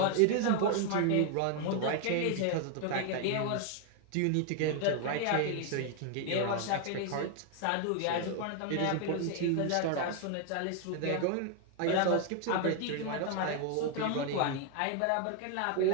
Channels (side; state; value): both; different; correlation 0.00